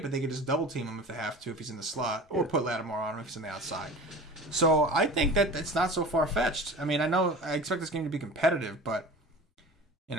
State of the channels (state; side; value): normal; both; correlation 0.38